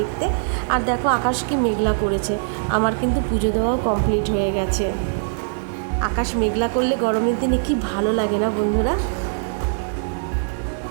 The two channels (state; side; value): silent; left; digital silence